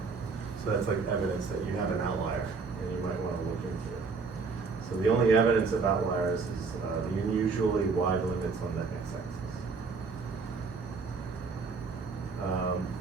So that's evidence that you have an outlier and you might want to look into it. So the only evidence of outliers is the unusually wide limits on the x-axis.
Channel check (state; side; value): quieter; left; 4.7 dB